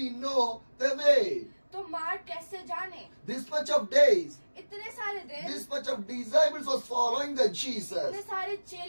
know the way? तो मार्ग कैसे जाने? This much of days, इतने सारे दिन, this much of disciples was following the Jesus. इतने सारे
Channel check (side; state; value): both; inverted; correlation -1.00